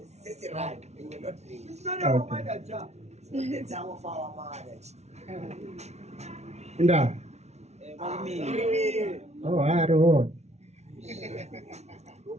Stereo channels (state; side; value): late; left; 0.32 ms